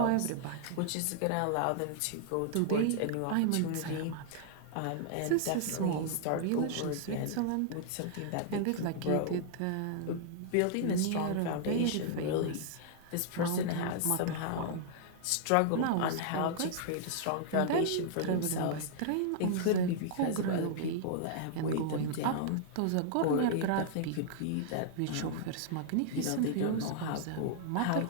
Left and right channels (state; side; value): different; both; correlation -0.01